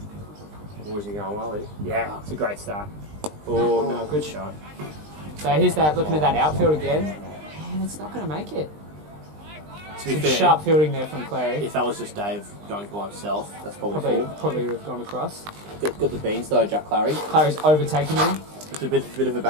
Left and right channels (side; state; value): left; late; 20 ms